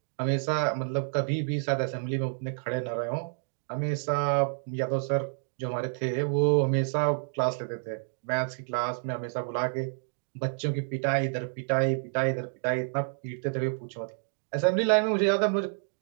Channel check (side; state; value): left; silent; digital silence